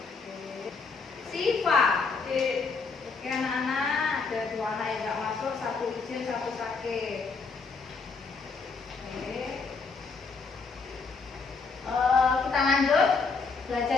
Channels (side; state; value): right; quieter; 4.6 dB